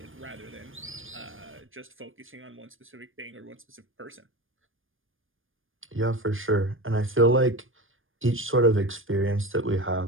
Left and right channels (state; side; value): late; left; 0.59 ms